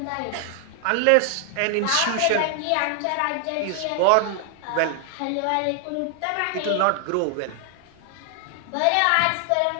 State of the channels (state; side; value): different; both; correlation 0.00